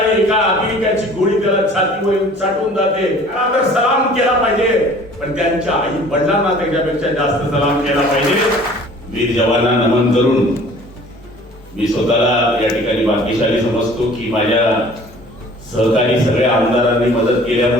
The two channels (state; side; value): normal; both; correlation 0.49